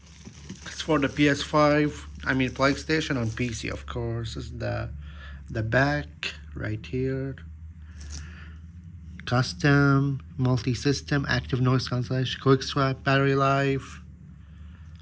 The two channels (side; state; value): both; identical; correlation 1.00